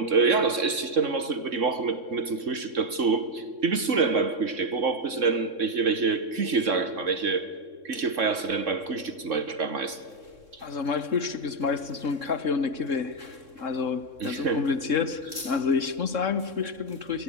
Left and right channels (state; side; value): late; left; 3.6 ms